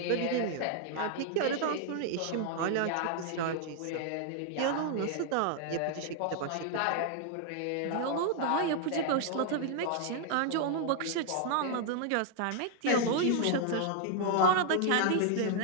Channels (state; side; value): different; both; correlation 0.00